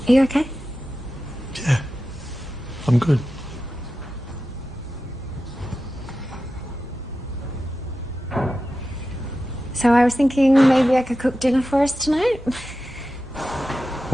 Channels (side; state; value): both; normal; correlation 0.92